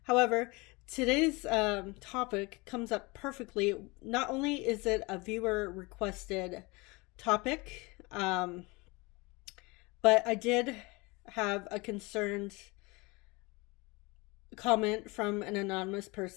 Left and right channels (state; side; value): quieter; right; 25.5 dB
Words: However, today's topic comes up perfectly. Not only is it a viewer requested topic, but I did have a concerned comment from an anonymous